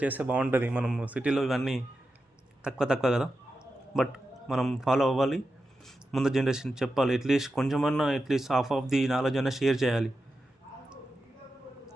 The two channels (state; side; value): normal; both; correlation 0.90